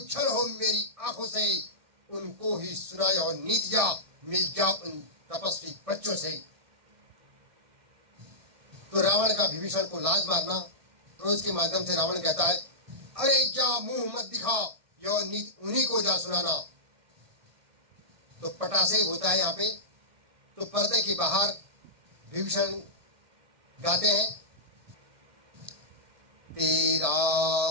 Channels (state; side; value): late; left; 1.2 ms